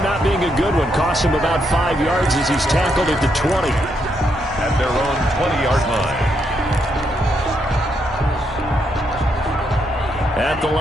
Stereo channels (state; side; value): normal; both; correlation 0.78